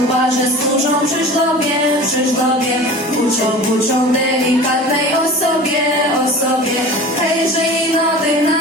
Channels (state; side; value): normal; both; correlation 0.38